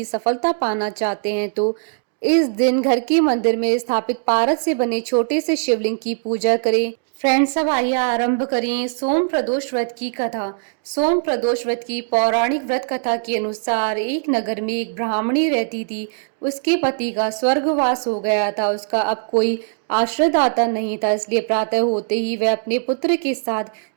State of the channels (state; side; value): silent; left; 65 dB below the other